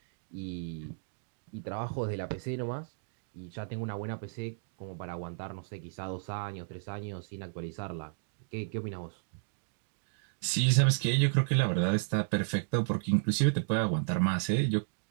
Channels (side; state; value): left; silent; digital silence